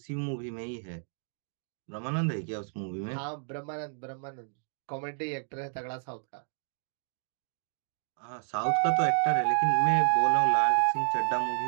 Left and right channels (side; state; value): left; silent; 57 dB below the other